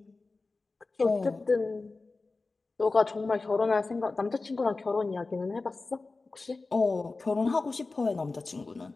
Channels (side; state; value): right; quieter; 3.7 dB